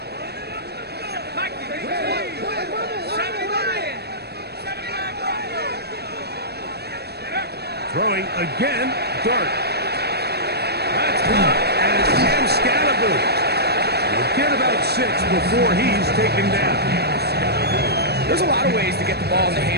Throwing again, Dark. That's caught, and it's Cam Scatterboo. He'll get about 6 before he's taken down. There's a lot of ways to get the ball in the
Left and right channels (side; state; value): left; late; 0.47 ms